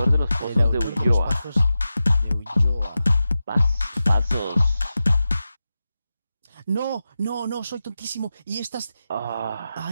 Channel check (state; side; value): inverted; both; correlation -0.92